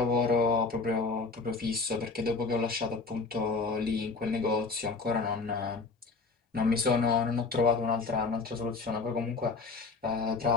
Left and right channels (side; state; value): right; quieter; 4.2 dB